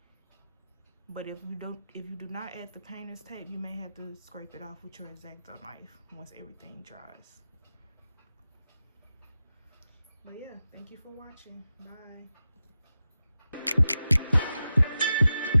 But if you do not add the painter's tape, you may have to scrape it off with your X-Acto knife once everything dries. But yeah, thank you for watching. Bye.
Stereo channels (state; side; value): inverted; both; correlation -0.92